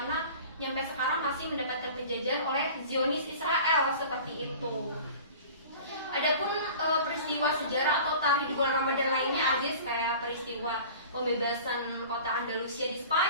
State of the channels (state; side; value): inverted; both; correlation -0.41